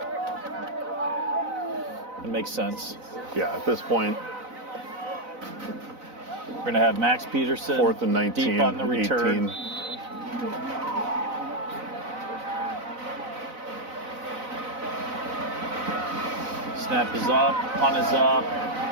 It makes sense. Yeah, at this point, We're going to have Max Peterson 4th and 19, deep on the return. 18. Snap is up, punt is up.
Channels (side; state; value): left; late; 4.0 ms